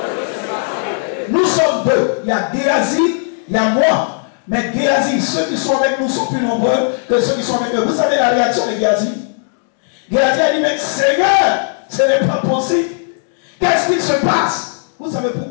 Nous sommes deux. Il y a Géasi, il y a moi. Mais Géasi, ceux qui sont avec nous sont plus nombreux que ceux qui sont avec eux. Vous savez la réaction de Géasi? Géasi a dit, mais Seigneur, ce n'est pas possible. Qu'est-ce qui se passe? Vous savez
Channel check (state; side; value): silent; right; digital silence